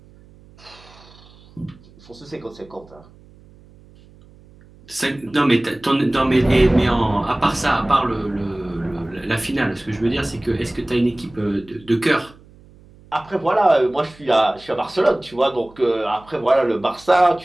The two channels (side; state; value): right; noise; hum, 25 dB below the sound